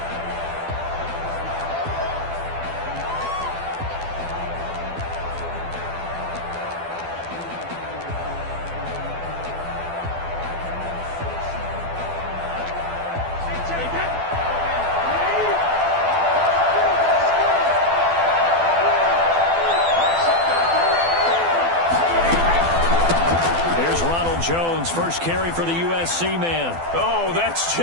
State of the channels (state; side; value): late; left; 12 ms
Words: Jones, first carry for the USC man. Oh, that's